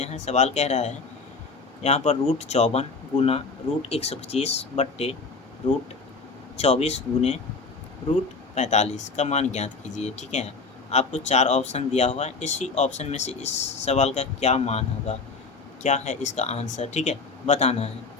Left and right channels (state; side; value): quieter; right; 4.3 dB